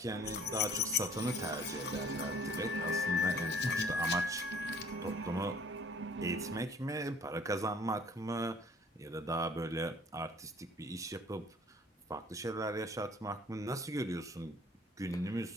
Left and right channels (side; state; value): both; normal; correlation 0.55